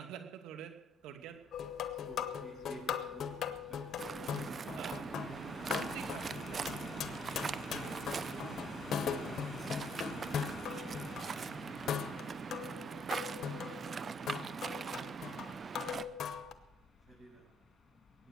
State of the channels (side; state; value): both; normal; correlation 0.66